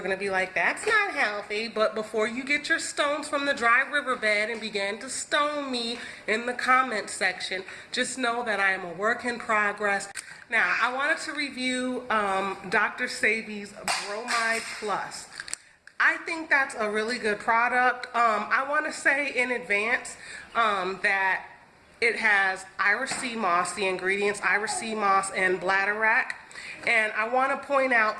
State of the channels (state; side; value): identical; both; correlation 1.00